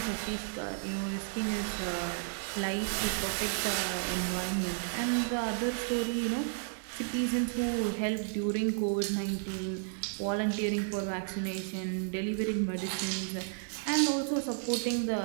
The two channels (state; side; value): silent; left; digital silence